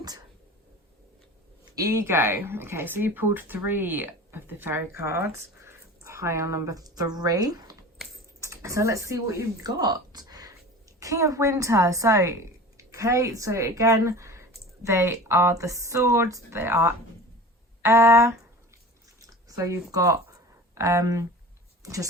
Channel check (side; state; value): both; normal; correlation 0.37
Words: Ego. Okay, so you pulled 3 of the fairy cards. Pile number 3. So let's see what you've got. King of Winter. So, okay, so again, they are the swords, they are air. So you've got,